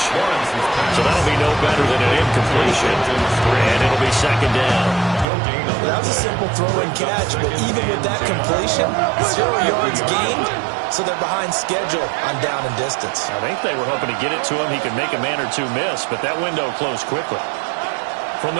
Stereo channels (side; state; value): left; drops out; at 5.2 s